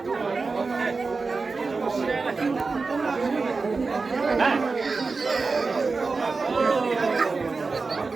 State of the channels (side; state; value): left; quieter; 4.2 dB